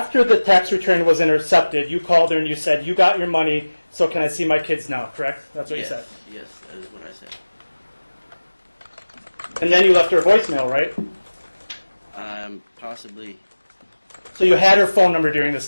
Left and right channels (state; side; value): inverted; both; correlation -1.00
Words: the tax return was intercepted, you called her and you said, "You got your money, so can I see my kids now?" Correct? That's what Yes, you said. yes, that is what I said. And then you left her a voicemail, right? Possibly, So you had her phone number during this